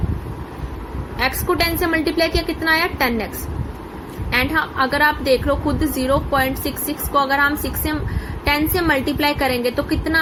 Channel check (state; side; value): identical; both; correlation 1.00